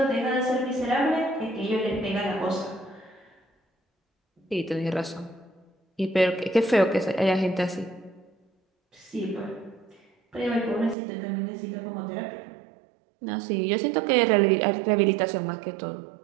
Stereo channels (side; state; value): left; drops out; at 11.0 s